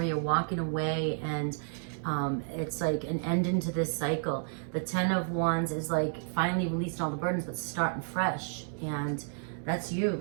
walking away, and it's like an end into this cycle. The 10 of Wands is like finally releasing all the burdens, but starting fresh. And that's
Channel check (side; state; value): left; silent; digital silence